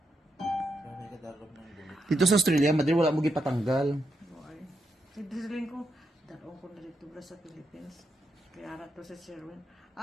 Grabe ka dalog ng bulit. Dito sa Australia, Madir, wala mo gipatanggal. Ay. Sidiling ko, dalawang ko na dito ba sa Philippines. Kaya ara to si Sherwin.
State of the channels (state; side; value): normal; both; correlation 0.82